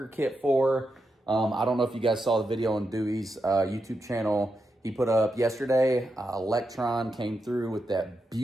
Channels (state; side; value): normal; both; correlation 0.86